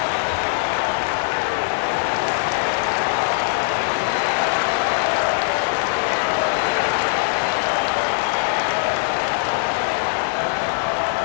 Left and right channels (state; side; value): silent; right; 57 dB below the other